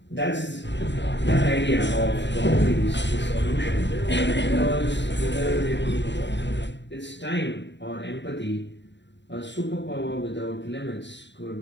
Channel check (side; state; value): right; late; 0.52 ms